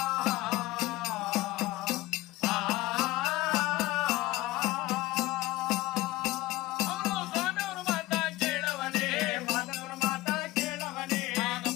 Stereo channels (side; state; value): right; quieter; 18.7 dB